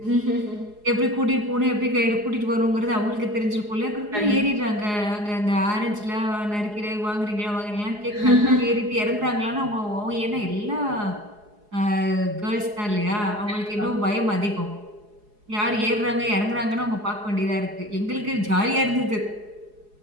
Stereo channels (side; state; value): left; late; 4.8 ms